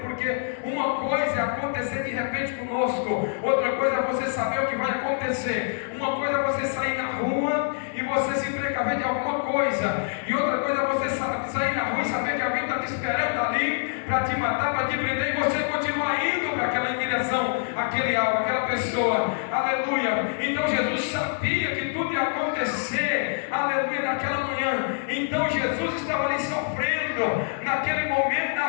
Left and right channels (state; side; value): silent; right; 61 dB below the other